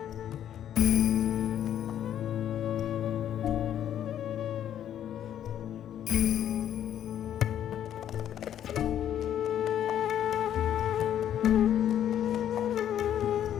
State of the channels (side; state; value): right; quieter; 10.5 dB